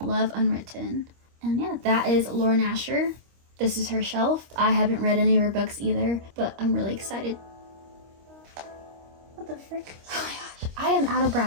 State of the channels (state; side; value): late; left; 25 ms